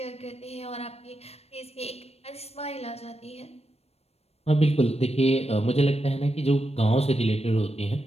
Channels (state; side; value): late; right; 0.30 ms